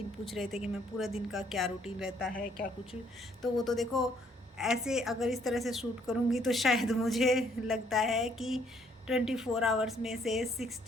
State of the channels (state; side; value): normal; both; correlation 0.66